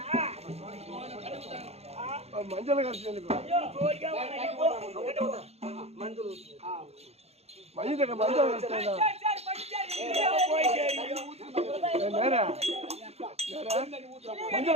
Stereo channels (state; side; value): late; left; 0.30 ms